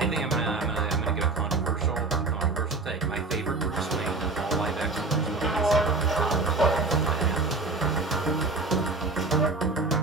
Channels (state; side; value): quieter; left; 3.7 dB